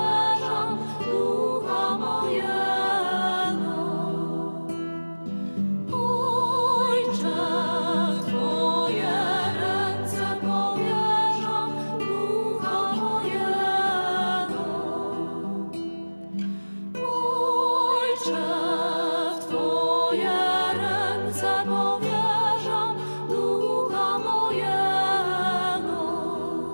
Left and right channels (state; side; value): inverted; both; correlation -1.00